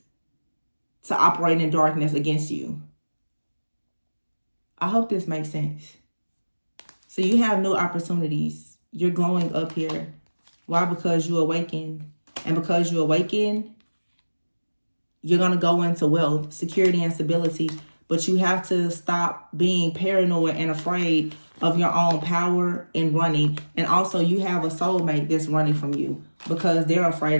to operate in darkness against you. I hope this makes sense. So you have new opportunities. You're glowing up here. Why? Because you awaken. And because you awaken, you're going to go into wealth, security, and stability. But you have to stop being paranoid and afraid of your own power and running. And also you have a soulmate that's running from you because they're afraid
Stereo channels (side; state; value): both; inverted; correlation -1.00